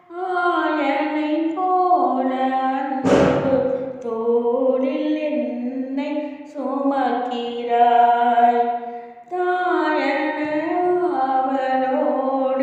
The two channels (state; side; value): identical; both; correlation 1.00